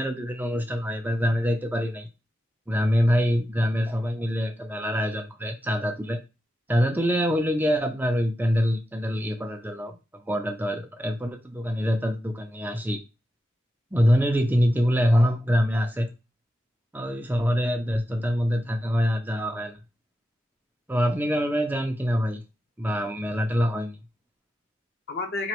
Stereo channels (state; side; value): normal; both; correlation 0.90